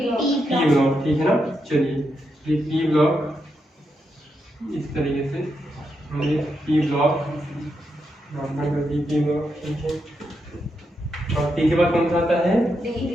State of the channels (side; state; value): both; normal; correlation 0.83